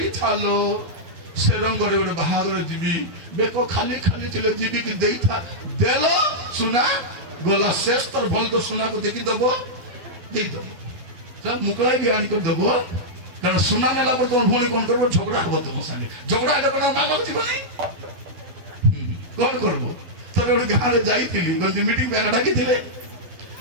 ସେ ରଙ୍ଗରେ ଗୋଟେ ବାହାଘର ଯିବି ବେକ ଖାଲି ଖାଲି ଥିଲେ ଯିବି କି ଦେଇଥା ଦେଲ ସୁନା ଗଲା ଶେଷ ତର ଭଲ କରି ସୁନାକୁ ଦେଖିଦବ ଦେଇଦବ ମୁକଳା ବି ଆଣିକରି ଦେବ କାରଣ ସୁନା ନେଲା ପରେ ତମ ଭଉଣୀ କ'ଣ କରିବ ଝଗଡ଼ା ହବ ତମ ସାଙ୍ଗେ ଝଗଡ଼ା ହେଲେ କ'ଣ ମାଗକୁ ଯିବ ନାହିଁ କ'ଣ କରିବ ଥରେ ଗୋଟେ ଗାଁରେ ଯାଇଥିଲି ମିଟିଂ ପାଇଁ ଡାକିଥିଲେ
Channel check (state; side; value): late; left; 12 ms